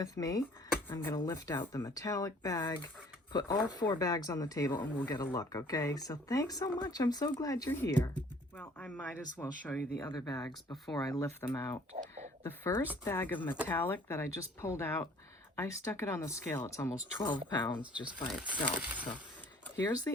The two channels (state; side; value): normal; both; correlation 0.55